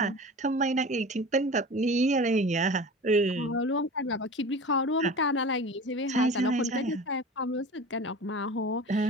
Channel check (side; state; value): both; normal; correlation 0.35